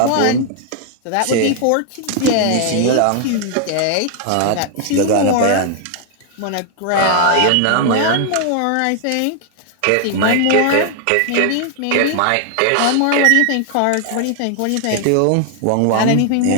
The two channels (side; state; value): both; different; correlation 0.00